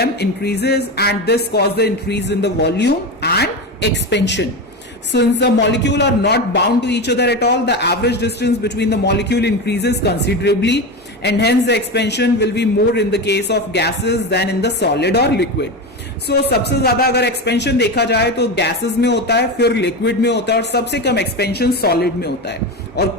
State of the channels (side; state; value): both; normal; correlation 0.20